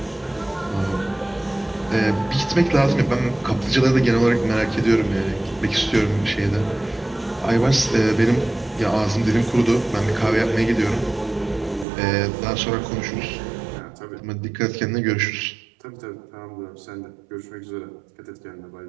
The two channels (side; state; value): left; drops out; at 11.9 s